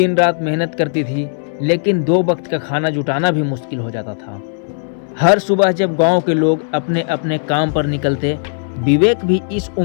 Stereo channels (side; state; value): right; silent; digital silence